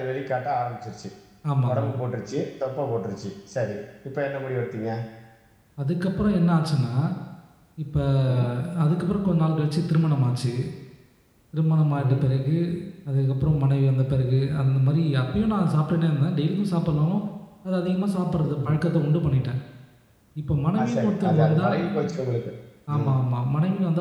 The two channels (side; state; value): both; identical; correlation 1.00